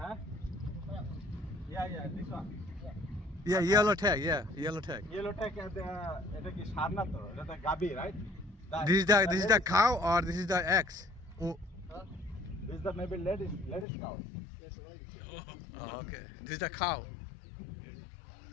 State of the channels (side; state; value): right; drops out; at 13.9 s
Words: Huh? Yeah, this one. Yeah, yellow tag. Yeah, yellow tag. Yellow tag এটা কি সার না তো? এটা তো গাবি, right? This is the cow or this is the X? Oh, This is the maybe ladies cow. Yes, ladies. oh, okay. This is the cow.